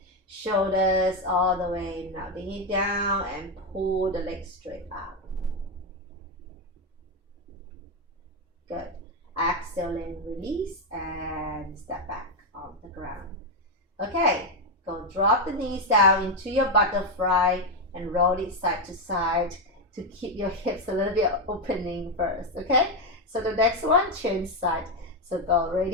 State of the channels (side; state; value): both; normal; correlation 0.06